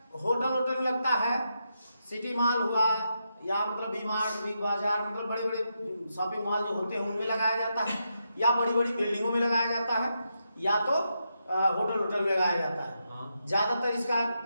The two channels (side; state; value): both; inverted; correlation -0.84